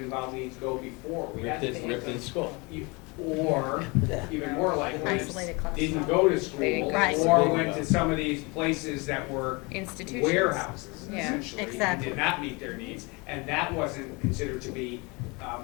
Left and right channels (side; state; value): right; quieter; 27.7 dB